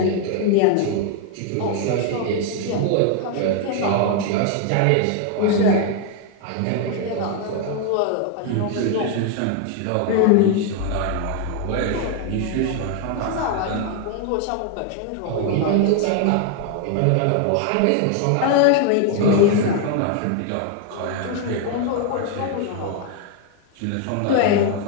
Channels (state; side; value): different; both; correlation 0.00